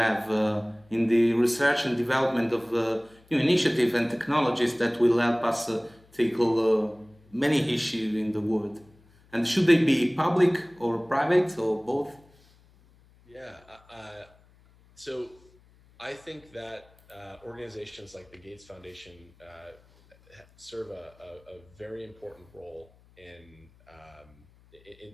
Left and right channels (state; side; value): noise; left; hum, 29 dB below the sound